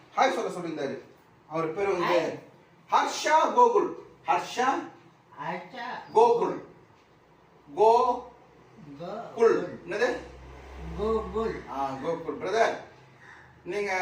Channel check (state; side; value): identical; both; correlation 1.00